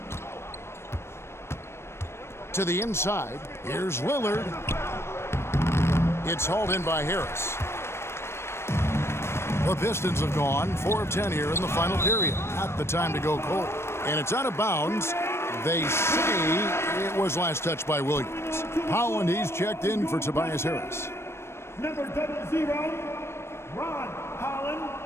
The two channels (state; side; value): late; right; 0.12 ms